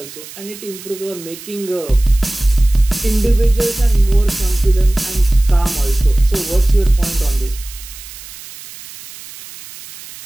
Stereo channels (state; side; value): noise; right; hiss, 16 dB below the sound